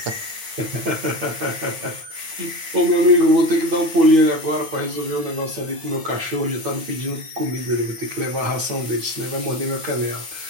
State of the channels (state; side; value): late; left; 8.9 ms